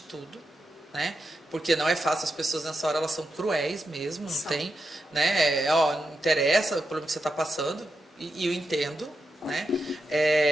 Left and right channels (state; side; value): normal; both; correlation 0.86